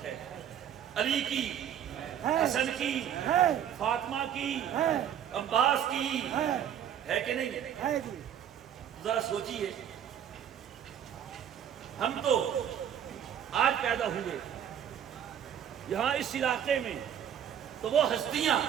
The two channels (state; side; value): quieter; left; 9.6 dB